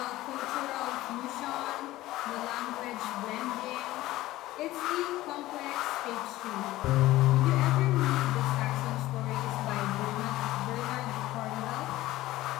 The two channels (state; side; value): quieter; right; 16.6 dB